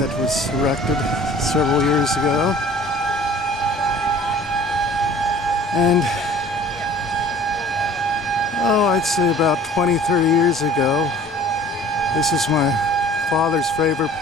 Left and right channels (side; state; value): both; normal; correlation 0.48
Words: was erected several years ago, and I'd say about 20-30 years ago, this is my father's favorite